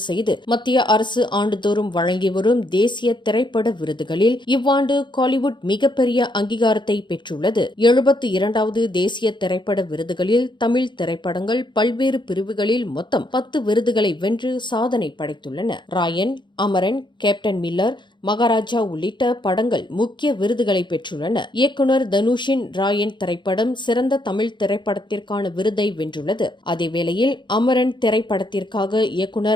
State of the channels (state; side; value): late; right; 0.22 ms